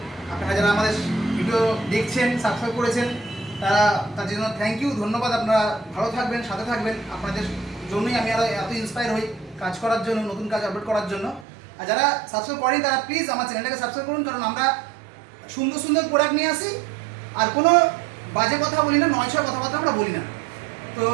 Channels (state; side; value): drops out; left; at 11.5 s